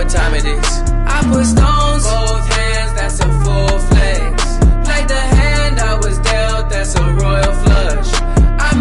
time it is. I put stones, both hands, that's a full flex. Like the hand I was dealt, that's a royal flush. I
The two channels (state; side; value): identical; both; correlation 1.00